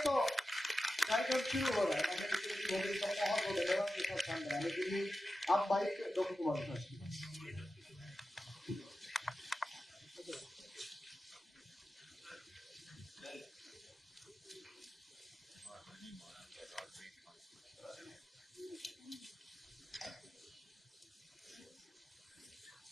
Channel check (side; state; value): both; normal; correlation 0.92